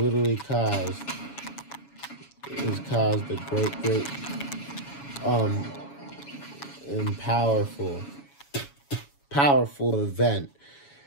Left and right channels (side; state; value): right; late; 7.1 ms